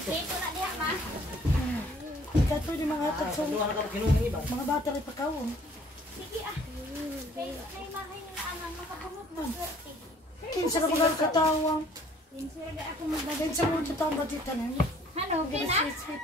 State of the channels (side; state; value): both; normal; correlation 0.57